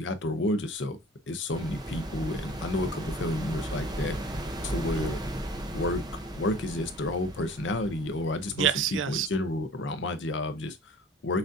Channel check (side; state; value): both; normal; correlation 0.47